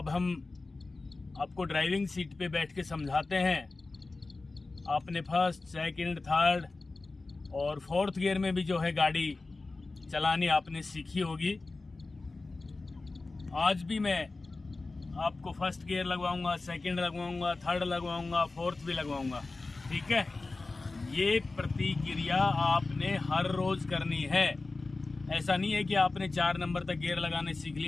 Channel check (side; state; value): right; quieter; 3.5 dB